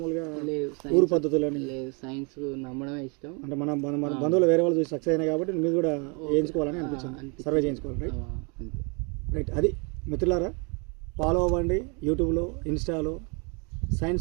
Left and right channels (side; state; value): left; quieter; 33.7 dB